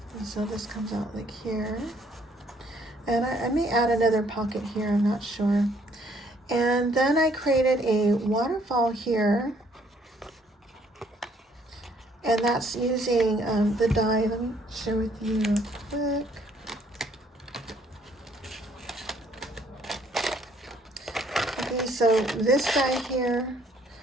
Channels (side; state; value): both; normal; correlation 0.65